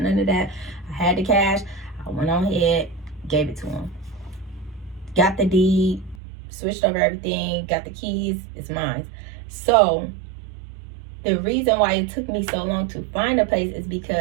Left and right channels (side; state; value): left; drops out; at 6.2 s